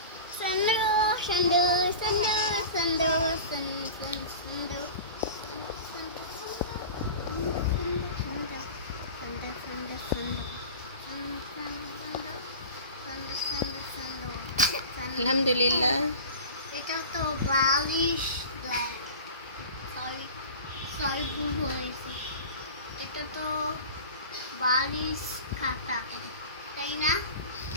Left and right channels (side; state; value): both; inverted; correlation -0.36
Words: সন্দু, সন্দু, সন্দু, সন্দু, সন্দু, সন্দু, আলহামদুলিল্লাহ। এটা তো বালিশ, সরি সরি ভুল বলেছি। এটা তো বালিশ খাতা, তাই না?